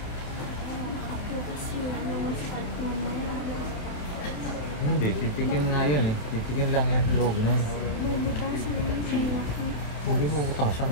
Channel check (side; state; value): right; late; 27 ms